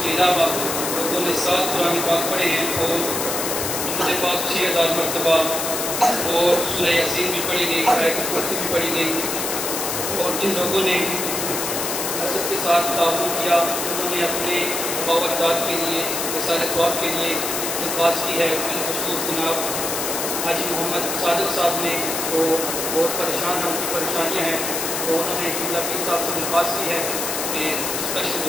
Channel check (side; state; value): left; noise; hiss, 2 dB below the sound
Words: کے علاوہ لوگوں نے 7 قرآن پاک پڑھے ہیں اور درود پاک 6000 مرتبہ اور سورہ یاسین بھی پڑھی گئی آیت الکرسی بھی پڑھی گئی اور جن لوگوں نے حضرت کے ساتھ تعاون کیا انہوں نے اپنے باوجداد کے لیے وسائل ثواب کے لیے درخواست کی ہے بالخصوص جناب حاجی محمد صادق صاحب نے وہ بہت پریشان ہیں ان کی پریشانیاں ہیں تو انہوں نے قبلہ پیر صاحب سے درخواست کی ہے کہ